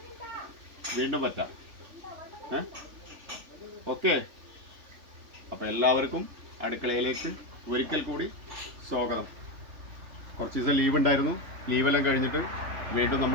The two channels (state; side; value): late; left; 3.4 ms